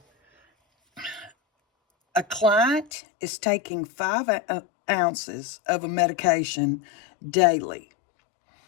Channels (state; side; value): drops out; right; at 2.9 s